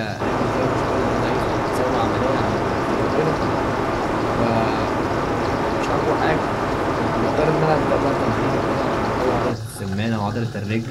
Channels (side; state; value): both; identical; correlation 1.00